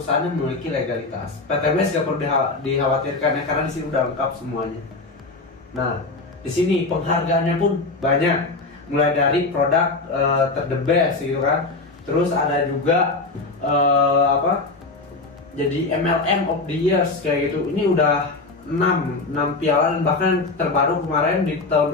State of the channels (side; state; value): right; quieter; 3.5 dB